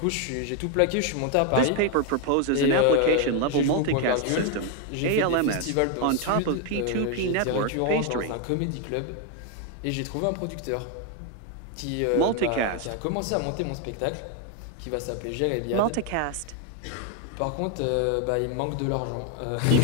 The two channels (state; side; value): different; both; correlation 0.01